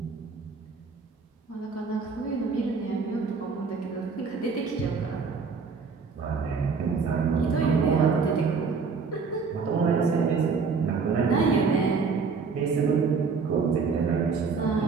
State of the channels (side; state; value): left; quieter; 5.1 dB